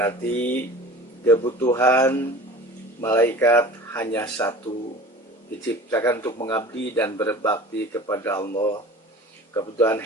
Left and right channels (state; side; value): normal; both; correlation 0.40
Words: kebutuhan malaikat hanya satu, diciptakan untuk mengabdi dan berbakti kepada Allah. Kebutuhan